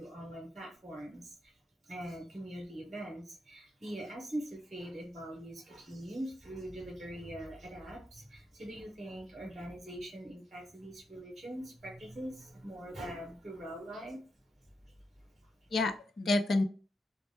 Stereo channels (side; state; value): both; normal; correlation 0.85